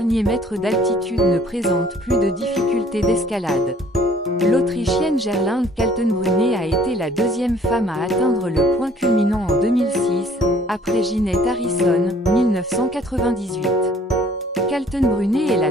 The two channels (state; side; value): normal; both; correlation 0.58